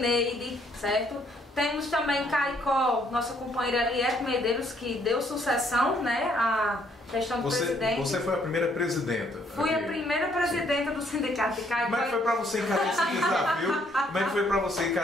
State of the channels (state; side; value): normal; both; correlation 0.68